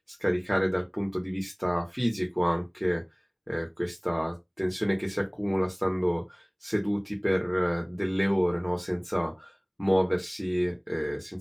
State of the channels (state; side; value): identical; both; correlation 1.00